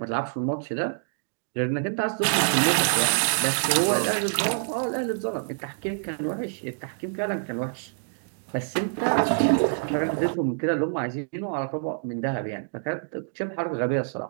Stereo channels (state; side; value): silent; left; digital silence